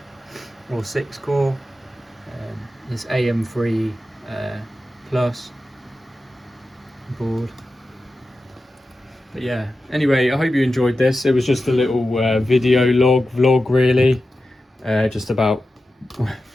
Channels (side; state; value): both; normal; correlation 0.92